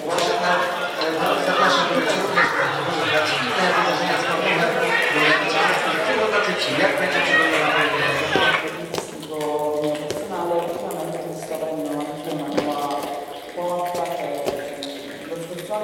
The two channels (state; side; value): identical; both; correlation 1.00